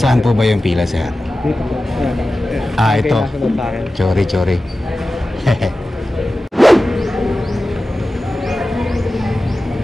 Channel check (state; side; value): normal; both; correlation 0.95